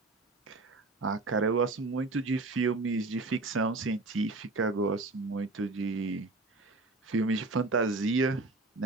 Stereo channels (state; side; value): quieter; left; 3.3 dB